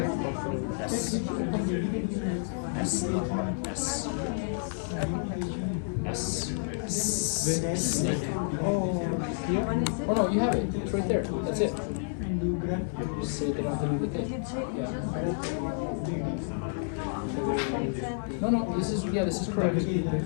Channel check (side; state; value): right; silent; 58 dB below the other